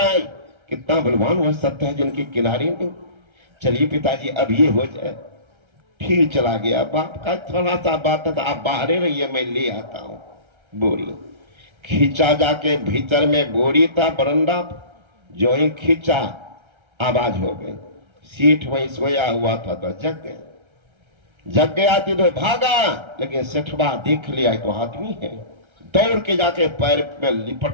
कितना बलवान वह सत्य है जिनके किनारे नहीं। चलिए पिताजी अब ये हो जाए। फिर चला गया। बाप का थोड़ा सा बात था, आप बाहर रहिए, मैं ले आता हूं बोरी। खींचा जाके भीतर में बोरी था बरंडा, जो ही खींचा आवाज हो गई। सीठ वहीं सोया हुआ था तो जग गया। जग गया थी तो भागा, लेकिन सेठवा देख लिया तो आदमी है, दौड़ के जाके पैर में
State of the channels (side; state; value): left; late; 1.3 ms